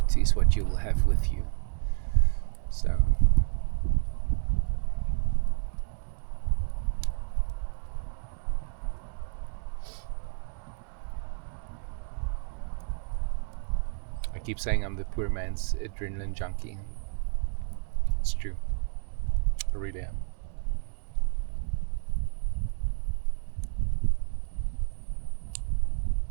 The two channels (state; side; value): silent; left; 58 dB below the other